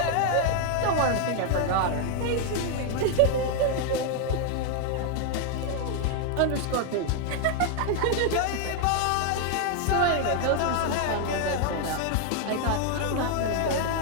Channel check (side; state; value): both; different; correlation 0.00